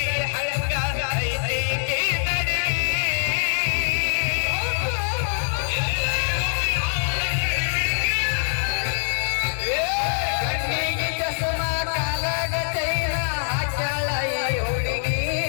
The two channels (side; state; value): right; silent; digital silence